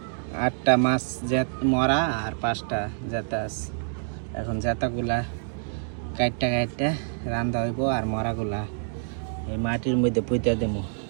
8টা মাছ মরা আর 5টা জেতা আছে। এখন জেতাগুলা কাটটা রান্ধা হইব আর মরাগুলা এই মাটির মধ্যে পুঁতে দেবো।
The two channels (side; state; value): left; silent; digital silence